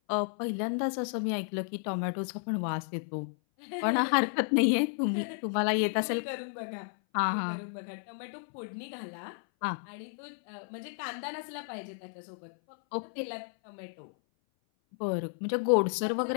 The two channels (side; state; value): right; silent; 56 dB below the other